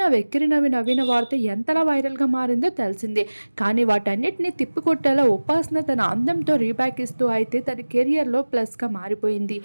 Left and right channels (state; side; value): inverted; both; correlation -1.00